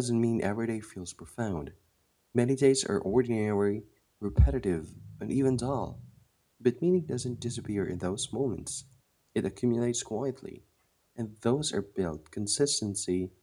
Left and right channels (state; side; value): identical; both; correlation 1.00